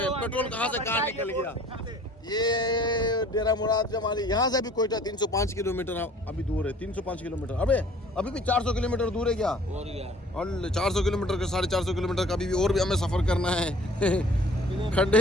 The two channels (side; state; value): both; normal; correlation 0.51